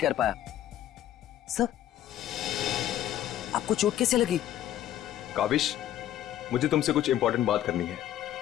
कर पाया। सर आपको चोट कैसे लगी? काविश, मुझे तुमसे कुछ इंपॉर्टेंट बात करनी है।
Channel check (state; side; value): quieter; right; 12.1 dB